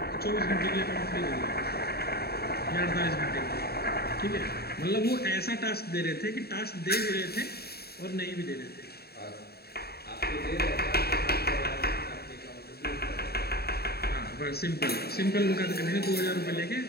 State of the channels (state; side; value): late; right; 0.46 ms